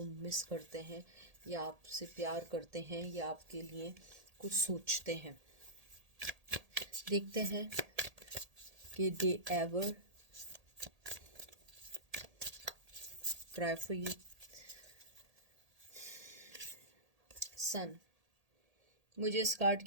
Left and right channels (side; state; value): left; late; 1.8 ms